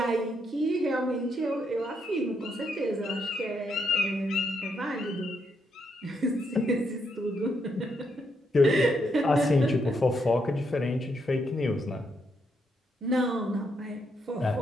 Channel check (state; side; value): normal; both; correlation 0.78